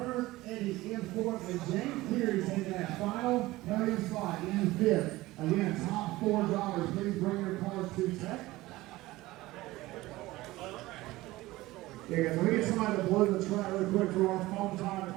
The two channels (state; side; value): quieter; left; 18.5 dB